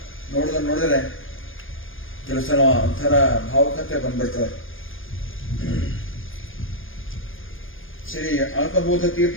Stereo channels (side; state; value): right; late; 0.59 ms